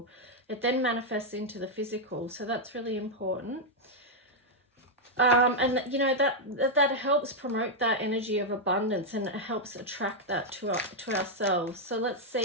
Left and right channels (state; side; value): normal; both; correlation -0.02